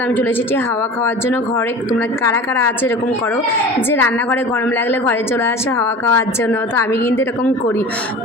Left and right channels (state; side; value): normal; both; correlation 0.37